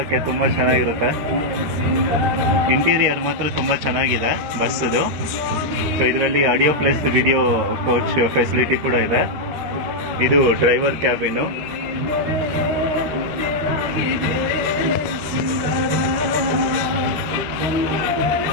ತುಂಬ ಚೆನ್ನಾಗಿರುತ್ತೆ. ಇಂಟೀರಿಯರ್ ಮಾತ್ರ ತುಂಬ ಚೆನ್ನಾಗಿದೆ ಬಸ್ಸದು. ಸೊ ಇದರಲ್ಲಿ audio plus video coach facility ಕೂಡ ಇದೆ. ಇದು driver cabin.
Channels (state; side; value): late; left; 13 ms